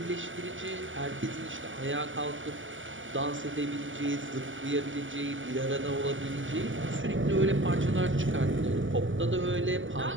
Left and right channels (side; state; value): left; late; 0.57 ms